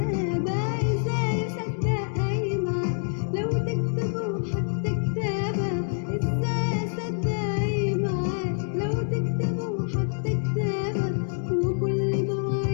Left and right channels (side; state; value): right; silent; 61 dB below the other